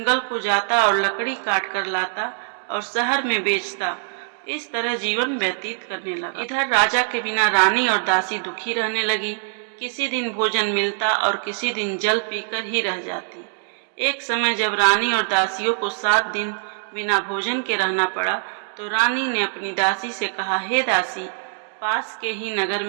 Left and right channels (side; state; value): left; silent; digital silence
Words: को जाता और लकड़ी काट कर लाता और शहर में बेचता। इस तरह जीवन व्यतीत करने लगा। इधर राजा के बिना रानी और दासी दुखी रहने लगी। किसी दिन भोजन मिलता और किसी दिन जल पीकर ही रह जाती। एक समय जब रानी और दासियों को 7 दिन बिना भोजन के रहना पड़ा, तो रानी ने अपनी दासी से कहा, हे दासी, पास के ही नगर